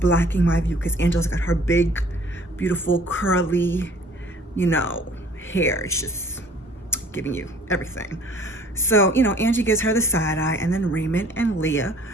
my view because Angela's got her big, beautiful, curly, hair. It's just giving you everything. So, Angie gives her the side eye, and then Raymond and Leah,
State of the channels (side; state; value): both; normal; correlation 0.52